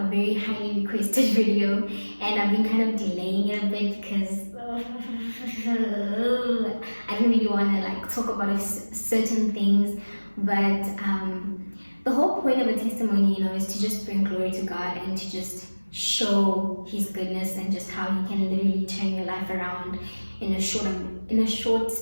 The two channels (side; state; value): both; inverted; correlation -1.00